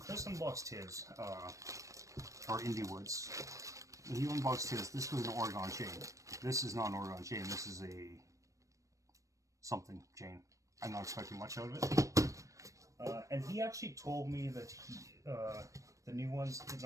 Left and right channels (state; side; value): late; left; 0.16 ms